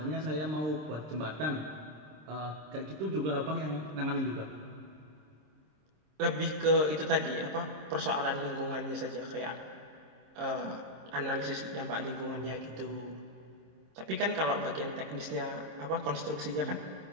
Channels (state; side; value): late; left; 26 ms